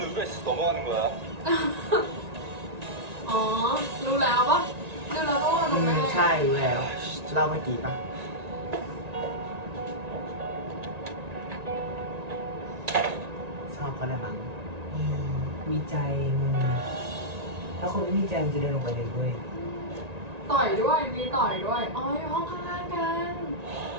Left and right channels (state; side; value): late; left; 1.9 ms